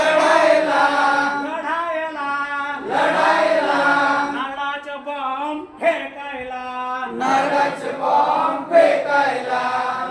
लढायला लढायला नारळाचं बॉम्ब फेकायला नारळाचे बॉम्ब फेकायला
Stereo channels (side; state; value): both; identical; correlation 1.00